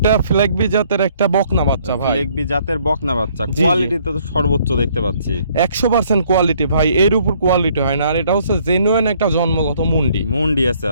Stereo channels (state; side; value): inverted; both; correlation -0.63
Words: ফিলাকবি জাতের একটা বকনা বাচ্চা ভাই। ফিলেকবি জাতের বকনা বাচ্চা, জি, জি। কোয়ালিটিতে তো সর্বোচ্চ দেখতে পাচ্ছি। 100% কোয়ালিটি ভাই, এর উপর কোয়ালিটি হয় না। আর এটা হচ্ছে জেনুইন একটা জন্মগত মুন্ডি। মুন্ডি আছে,